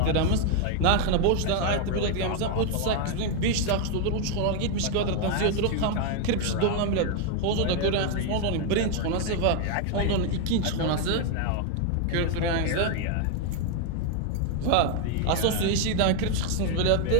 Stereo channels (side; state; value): both; different; correlation 0.01